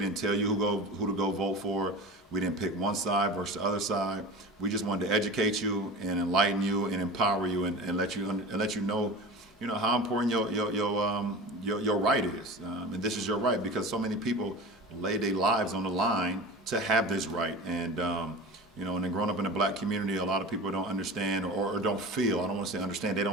tell you who to go vote for. We didn't pick one side versus the other side. We just wanted to educate you and enlighten you and empower you and let you know, how important your right is. And this is your right, because so many people lay their lives on the line to have this right. And and then growing up in a black community, a lot of people don't understand or don't feel, I don't want to say understand, they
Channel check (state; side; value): normal; both; correlation 0.33